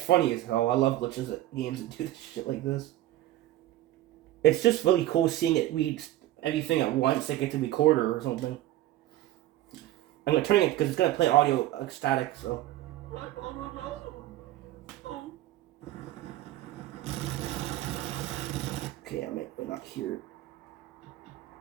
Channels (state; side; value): quieter; left; 14.7 dB